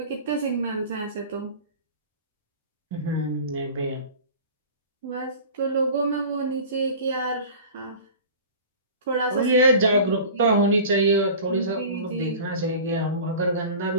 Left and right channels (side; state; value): both; inverted; correlation -0.38